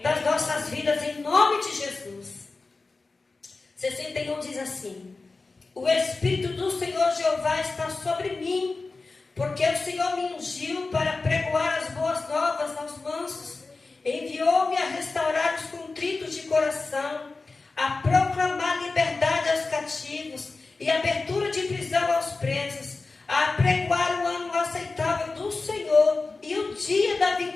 das nossas vidas, em nome de Jesus. 61 diz assim: o Espírito do Senhor Jeová está sobre mim, porque o Senhor me ungiu para pregoar as boas novas aos mansos, enviou-me a restaurar os contritos de coração, a proclamar liberdade aos cativos e abertura de prisão aos presos, a pregoar o ano aceitável do Senhor e o dia da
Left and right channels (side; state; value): right; quieter; 3.8 dB